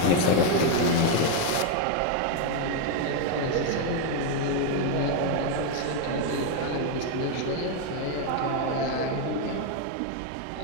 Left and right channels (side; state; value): both; different; correlation 0.01